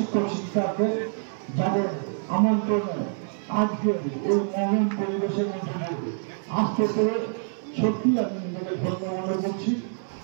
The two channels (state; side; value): silent; left; 59 dB below the other